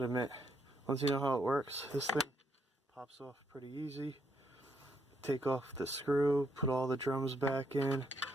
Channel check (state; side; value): normal; both; correlation 0.75